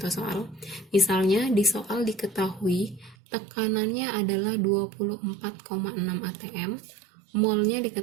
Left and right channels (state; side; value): drops out; left; at 3.2 s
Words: soal. Misalnya di soal diketahui tekanannya adalah 24,6 atm, molnya